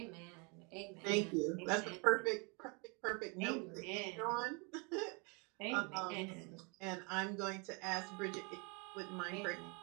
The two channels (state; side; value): quieter; left; 32.2 dB